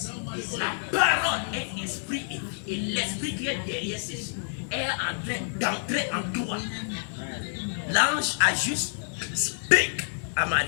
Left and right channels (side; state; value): right; silent; digital silence